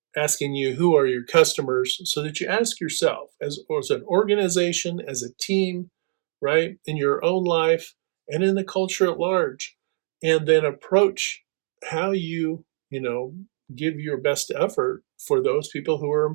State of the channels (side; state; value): left; silent; 63 dB below the other